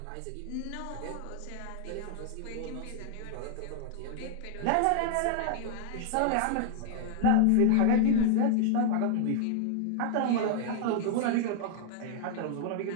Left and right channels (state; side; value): different; both; correlation 0.00